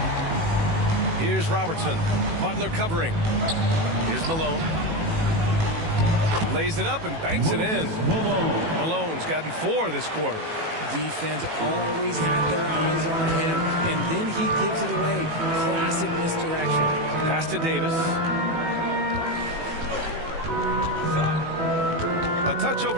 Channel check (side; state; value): left; late; 18 ms